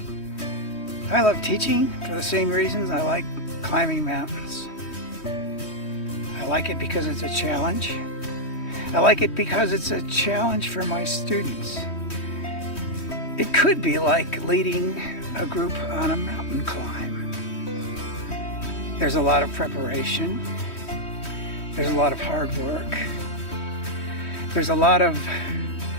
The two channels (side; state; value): right; late; 3.1 ms